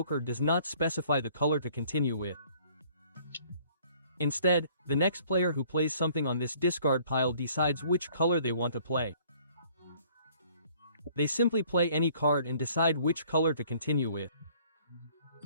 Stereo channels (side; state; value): both; inverted; correlation -0.58